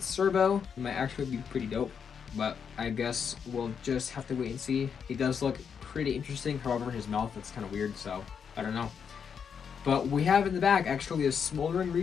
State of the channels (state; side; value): quieter; right; 7.0 dB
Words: Servo, it might actually be pretty dope. But I guess we'll just have to wait and see. He does look pretty interesting. However, his mouth, that's kind of weird, so I don't know. But we have in the back actually a Smoldering